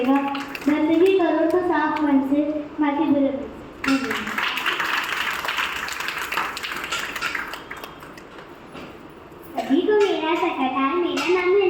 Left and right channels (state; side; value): identical; both; correlation 1.00